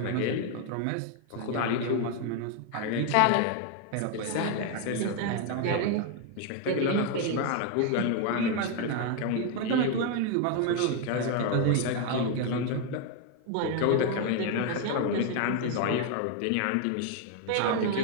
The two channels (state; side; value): different; both; correlation 0.01